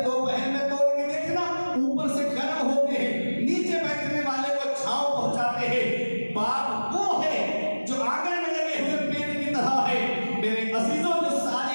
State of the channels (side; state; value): both; inverted; correlation -1.00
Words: दोपहर में तोड़ के देखना, ऊपर से गर्म होते हैं, नीचे बैठने वाले को छांव पहुंचाते हैं। बाप